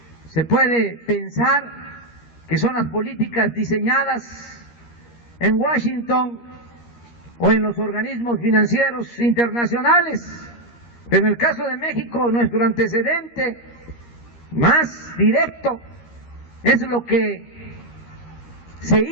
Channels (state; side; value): late; right; 13 ms